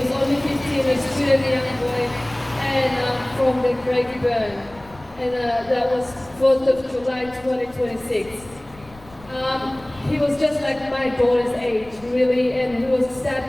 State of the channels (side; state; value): left; noise; rumble, 22 dB below the sound